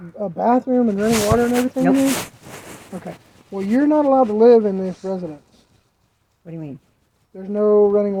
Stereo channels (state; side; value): identical; both; correlation 1.00